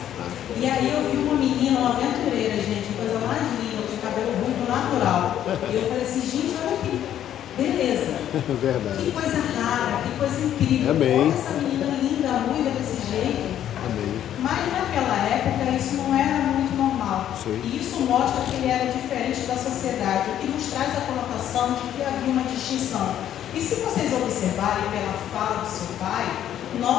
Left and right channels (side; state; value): right; quieter; 10.9 dB